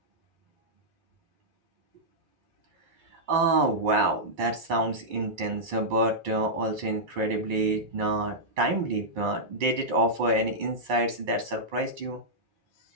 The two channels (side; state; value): left; late; 2.3 ms